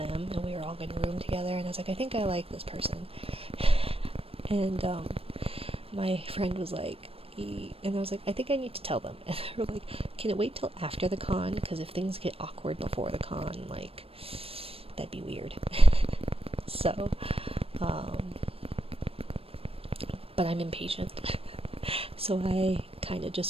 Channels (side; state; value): left; late; 0.28 ms